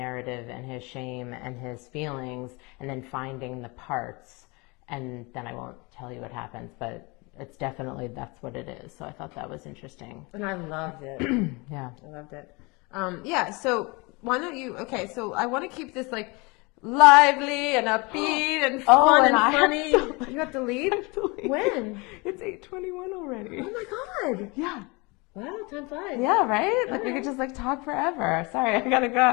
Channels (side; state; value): right; quieter; 27.2 dB